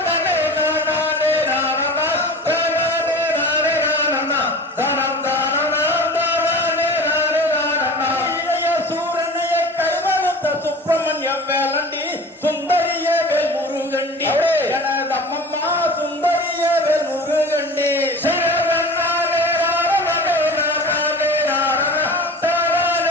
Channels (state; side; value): normal; both; correlation 0.38